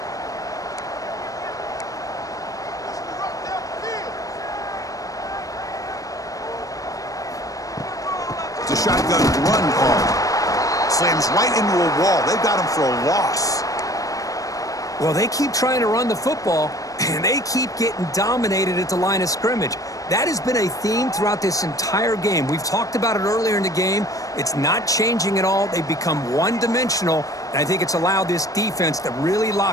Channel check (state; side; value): late; right; 0.16 ms